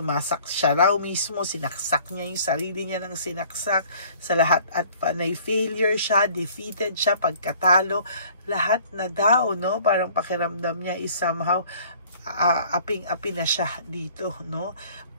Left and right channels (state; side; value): inverted; both; correlation -0.53